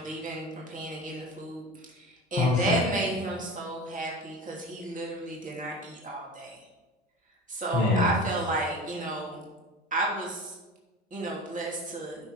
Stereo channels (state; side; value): normal; both; correlation 0.34